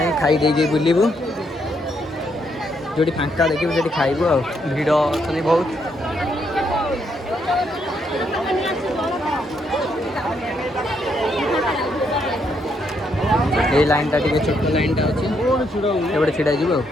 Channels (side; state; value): both; normal; correlation 0.75